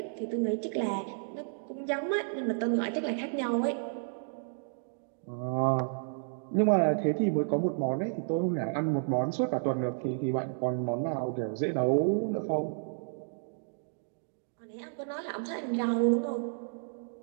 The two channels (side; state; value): left; silent; digital silence